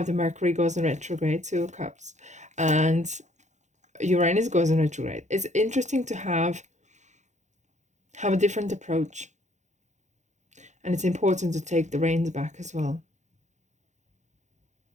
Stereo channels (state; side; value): late; left; 0.34 ms